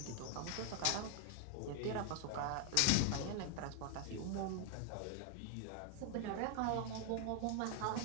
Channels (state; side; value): different; both; correlation 0.00